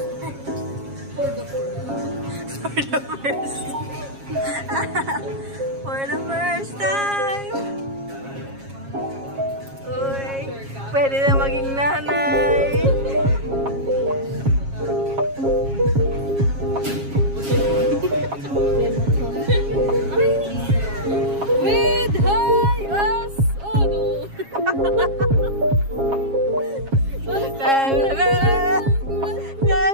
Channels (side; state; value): left; late; 7.3 ms